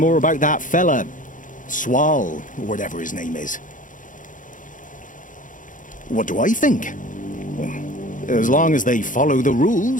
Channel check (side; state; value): right; late; 0.38 ms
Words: about that fella, Swal, or whatever his name is. What do I think? Well, as long as they follow the